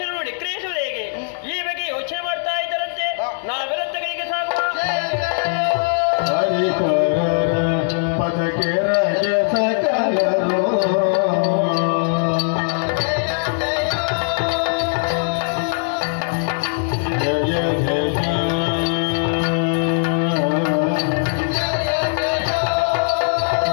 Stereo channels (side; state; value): right; silent; digital silence